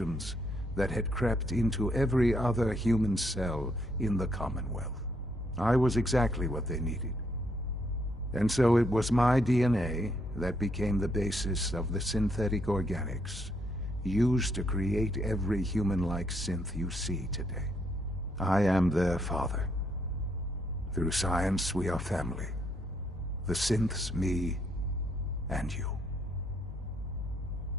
that had crept into every other human cell in the Commonwealth. I was exactly what they needed. And so it was my DNA that became the basis of the synthetic organics used to create every human-like synth you see today. I am their father. Through science, we are family. The synths, me, and you.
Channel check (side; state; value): both; normal; correlation 0.73